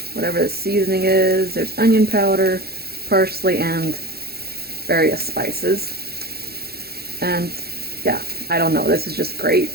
whatever the seasoning is. There's onion powder, parsley, and various spices. And yeah, I don't know, this is just great.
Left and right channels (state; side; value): late; left; 0.46 ms